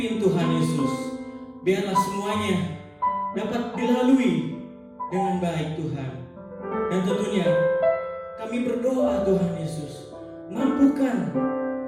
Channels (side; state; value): both; identical; correlation 1.00